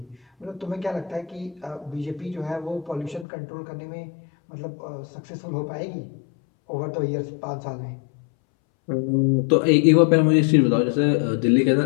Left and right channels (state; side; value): drops out; right; at 3.2 s